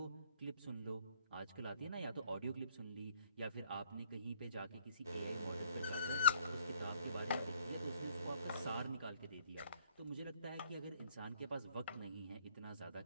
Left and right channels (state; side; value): inverted; both; correlation -0.62